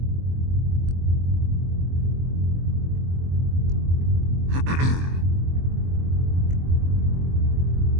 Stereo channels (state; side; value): late; left; 23 ms